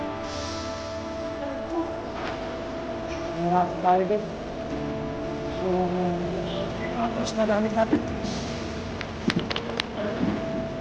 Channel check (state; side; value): identical; both; correlation 1.00